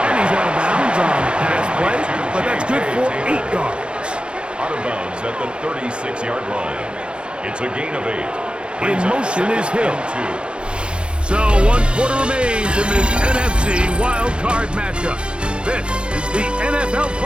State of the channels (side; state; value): left; late; 0.055 ms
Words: And he's out of bounds on the pass play, but that's good for 8 yards. On out of bounds at the 36-yard line. It's a gain of 8. In motion is Hill. 2. So 1 quarter remains in this NFC wild card matchup. This is the NFL